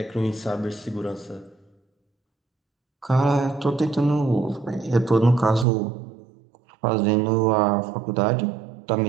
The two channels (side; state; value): left; drops out; at 5.7 s